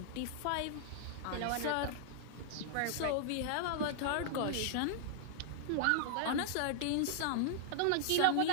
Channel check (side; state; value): both; different; correlation -0.01